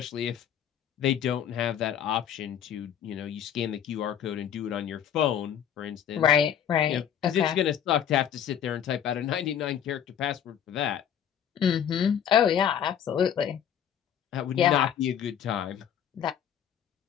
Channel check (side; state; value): right; quieter; 9.2 dB